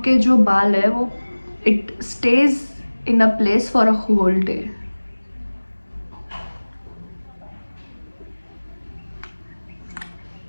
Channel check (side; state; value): both; inverted; correlation -1.00